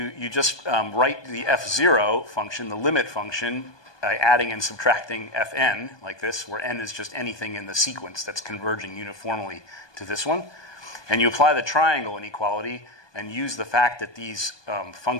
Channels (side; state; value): right; late; 1.2 ms